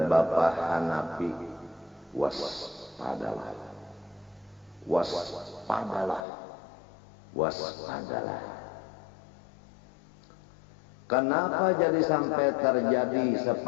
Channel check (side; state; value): right; drops out; at 6.2 s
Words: Bapak Hanafi, waspadalah, waspadalah, waspadalah. Kenapa jadi sampai terjadi